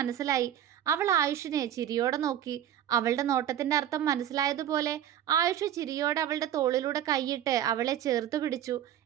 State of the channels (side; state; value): left; quieter; 10.9 dB